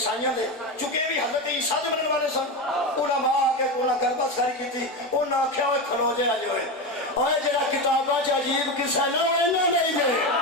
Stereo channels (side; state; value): both; normal; correlation 0.17